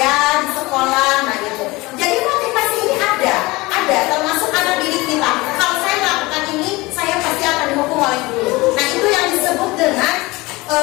di sekolah. Nah gitu. Jadi motivasi ini ada termasuk anak didik kita. Kalau saya melakukan ini saya pasti akan dihukum oleh guru. Nah itu yang disebut dengan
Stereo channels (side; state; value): right; quieter; 22.0 dB